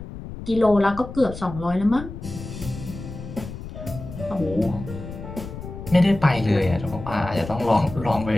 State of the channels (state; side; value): noise; left; rumble, 11 dB below the sound